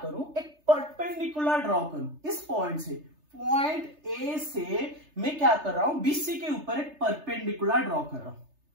करूं, एक परपेंडिकुलर ड्रॉ करूं इस पॉइंट से, पॉइंट ए से मैं क्या कर रहा हूं, बीसी के ऊपर एक परपेंडिकुलर ड्रॉ कर रहा हूं।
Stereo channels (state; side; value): late; left; 3.3 ms